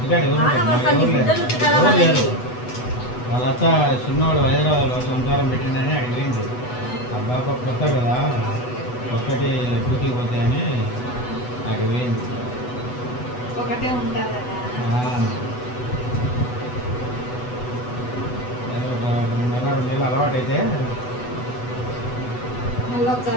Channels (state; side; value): late; right; 8.1 ms